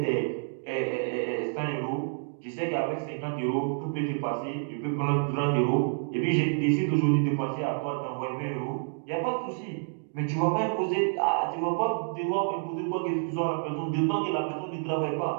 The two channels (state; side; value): silent; left; digital silence